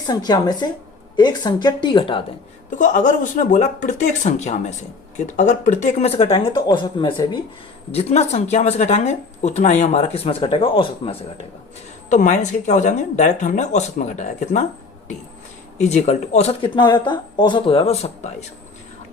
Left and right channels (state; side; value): quieter; right; 4.2 dB